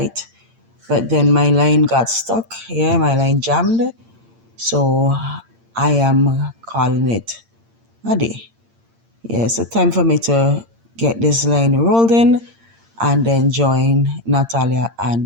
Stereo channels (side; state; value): left; late; 8.7 ms